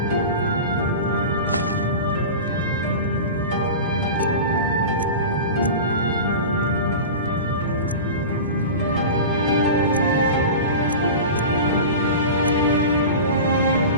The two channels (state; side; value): inverted; both; correlation -0.31